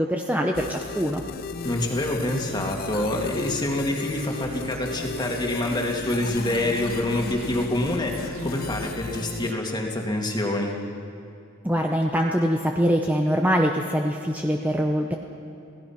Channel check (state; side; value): normal; both; correlation 0.67